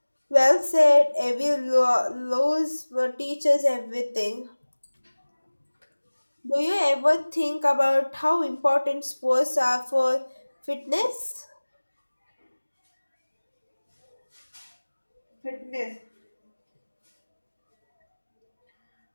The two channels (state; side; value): inverted; both; correlation -1.00